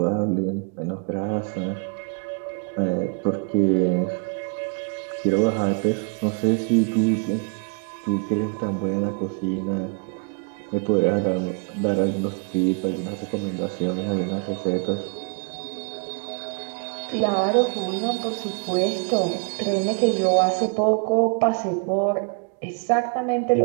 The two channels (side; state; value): left; quieter; 37.4 dB